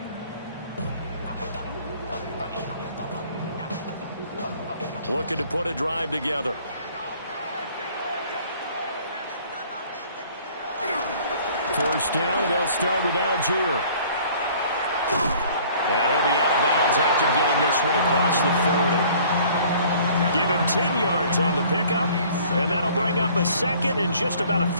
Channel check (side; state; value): both; inverted; correlation -0.54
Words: Looking to put a drive together. First down, and they'll start with Algier. And he'll be out of bounds after getting this one across the 40. Give him 10 yards on the pickup, and that'll bring up a second and just about a